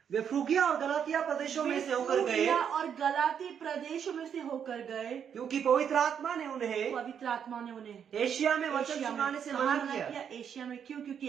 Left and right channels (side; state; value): left; quieter; 8.0 dB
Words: वे फ्रूगिया और गलातिया प्रदेशों में से होकर गए, फ्रूगिया और गलाती प्रदेशों में से होकर गए, क्योंकि पवित्र आत्मा ने उन्हें एशिया में वचन सुनाने से मना किया। एशिया में क्यों? क्योंकि